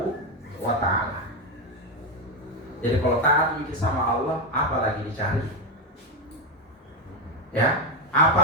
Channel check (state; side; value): normal; both; correlation 0.09